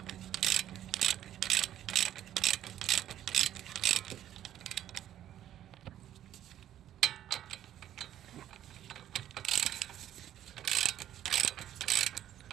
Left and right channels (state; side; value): quieter; left; 11.7 dB